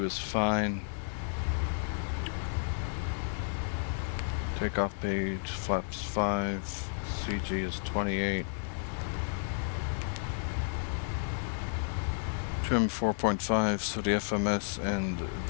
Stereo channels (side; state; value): right; silent; digital silence